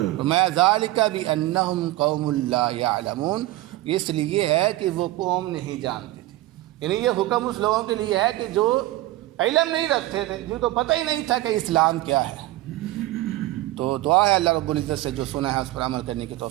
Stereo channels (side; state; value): left; quieter; 16.9 dB